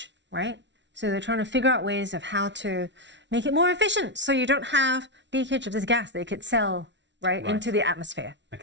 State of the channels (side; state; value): left; late; 0.52 ms